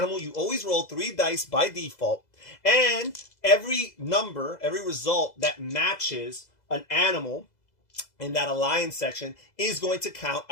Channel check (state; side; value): late; right; 2.0 ms